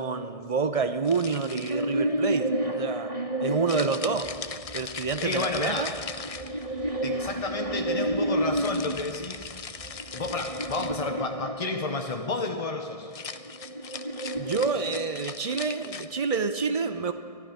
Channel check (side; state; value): right; late; 1.6 ms